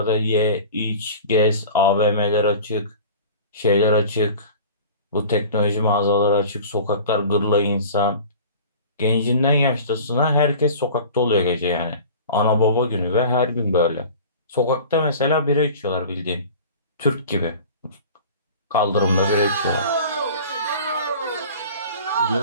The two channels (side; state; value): both; inverted; correlation -0.40